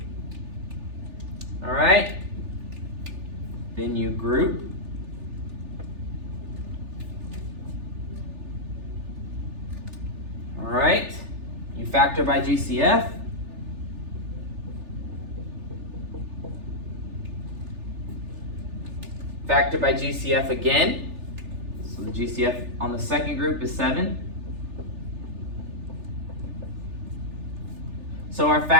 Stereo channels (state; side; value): late; left; 3.4 ms